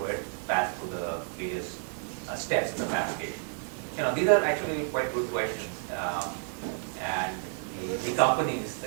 the various steps in the fabrication. These are actually quite good questions, and the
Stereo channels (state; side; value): silent; left; 57 dB below the other